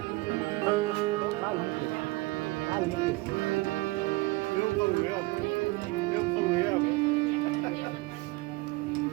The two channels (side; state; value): left; quieter; 21.9 dB